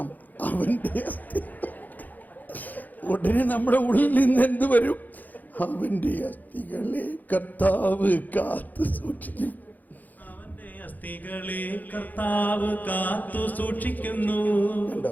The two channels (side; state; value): right; late; 0.083 ms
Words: അവൻ്റെ അസ്ഥി. ഉടനെ നമ്മുടെ ഉള്ളിൽ നിന്ന് എന്ത് വരും? അവൻ്റെ അസ്ഥികളെ കർത്താവ് കാത്തു സൂക്ഷിക്കും. കണ്ടോ?